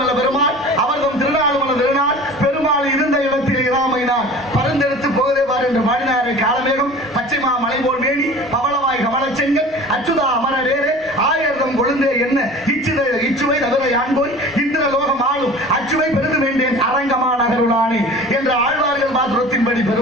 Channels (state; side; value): normal; both; correlation 0.40